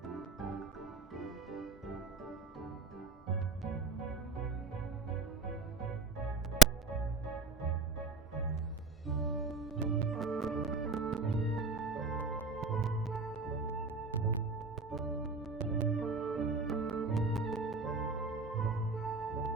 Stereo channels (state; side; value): quieter; left; 3.5 dB